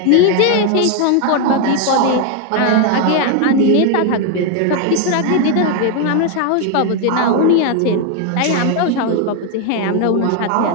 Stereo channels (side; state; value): both; different; correlation 0.01